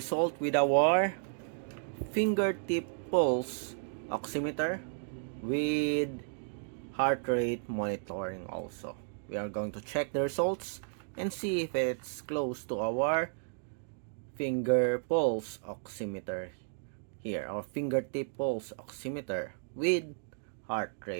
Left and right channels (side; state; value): left; silent; digital silence